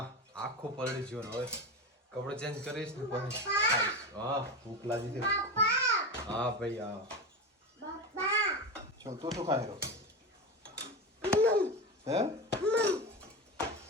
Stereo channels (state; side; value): normal; both; correlation 0.21